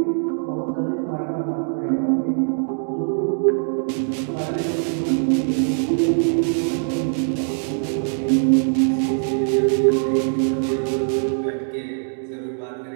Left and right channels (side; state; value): left; silent; digital silence